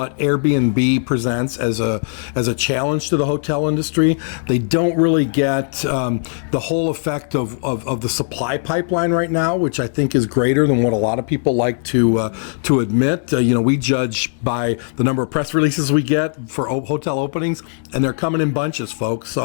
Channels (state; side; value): silent; right; 67 dB below the other